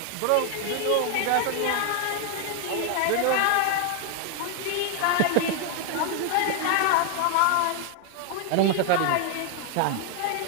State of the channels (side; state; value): both; different; correlation 0.00